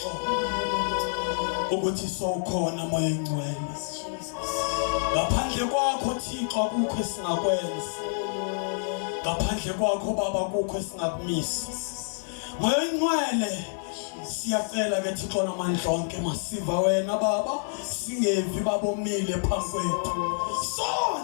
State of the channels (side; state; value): right; silent; digital silence